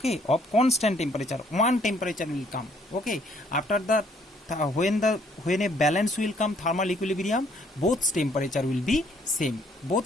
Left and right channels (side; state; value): both; normal; correlation 0.65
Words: of constant temperature. One temperature will come, okay. After that, when a balance will come, thermal equilibrium, both temperature will be same.